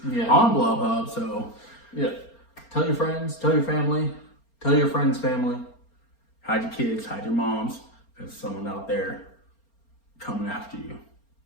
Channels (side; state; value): right; late; 4.3 ms